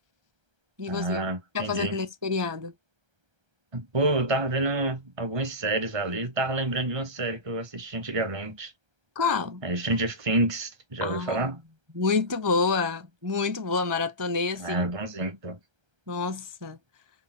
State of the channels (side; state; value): left; late; 1.3 ms